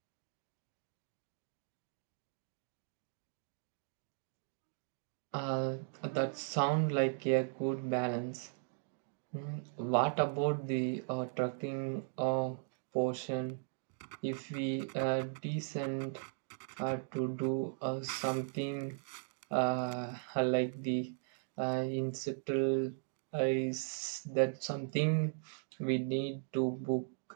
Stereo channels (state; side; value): silent; left; digital silence